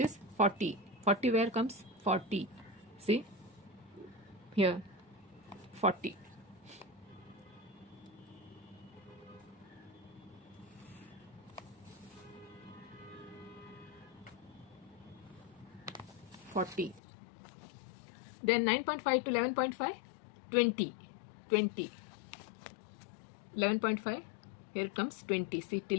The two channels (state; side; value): drops out; right; at 17.0 s